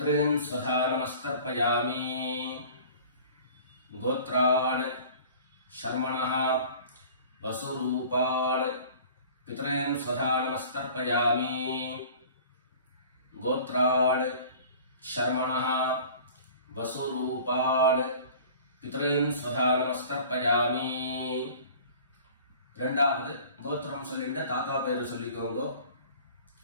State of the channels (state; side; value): inverted; both; correlation -0.45